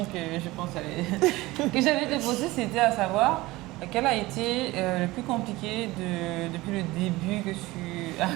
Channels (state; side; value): quieter; left; 19.8 dB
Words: que je pense que j'allais te poser, c'était à savoir quel a été le plus compliqué depuis le début que tu as